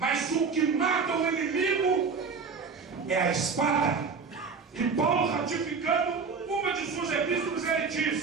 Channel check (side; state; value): left; quieter; 5.2 dB